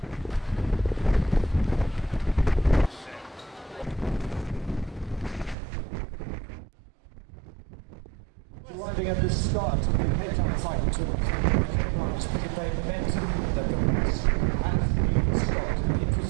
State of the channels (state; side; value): drops out; left; at 5.6 s